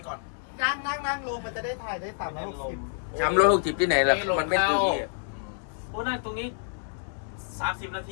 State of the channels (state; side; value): silent; right; digital silence